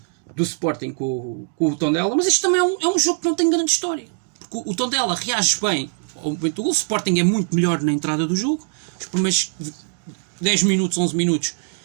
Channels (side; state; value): left; silent; 64 dB below the other